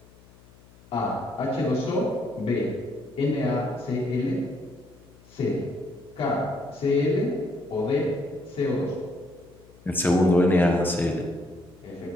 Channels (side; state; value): left; noise; hum, 25 dB below the sound